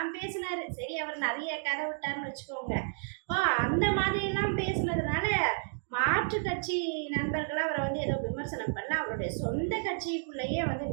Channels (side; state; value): left; silent; digital silence